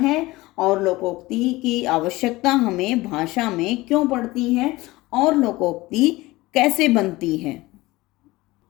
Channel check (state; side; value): quieter; right; 19.9 dB